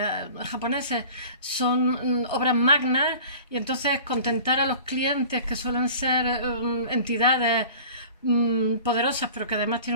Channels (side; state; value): both; inverted; correlation -0.42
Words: japoneses, son obras magnas y entonces contentar a los clientes que suelen ser entidades poderosas, pero que además